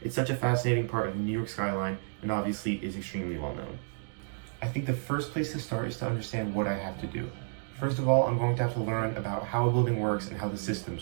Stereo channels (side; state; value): left; silent; digital silence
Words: It's such a fascinating part of the New York skyline and obviously is extremely well known. I think the first place to start is to understand what I have to do. First of all, I'm going to have to learn about how a building works and how the